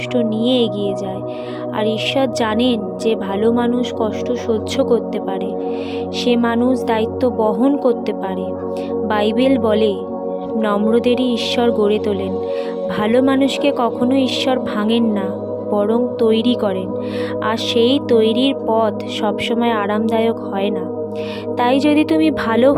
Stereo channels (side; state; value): both; identical; correlation 1.00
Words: নিয়ে এগিয়ে যায়। আর ঈশ্বর জানেন যে ভালো মানুষ কষ্ট সহ্য করতে পারে, সে মানুষ দায়িত্ব বহন করতে পারে। বাইবেল বলে, নম্রদেরই ঈশ্বর গড়ে তোলেন। ভালো মানুষকে কখনো ঈশ্বর ভাঙেন না, বরং তৈরি করেন। আর সেই তৈরির পথ সবসময় আরামদায়ক হয় না। তাই যদি তুমি ভালো